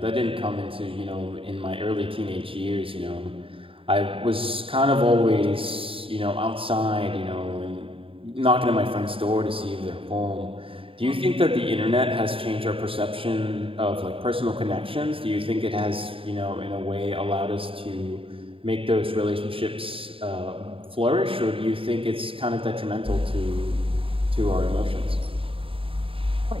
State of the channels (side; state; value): left; late; 0.26 ms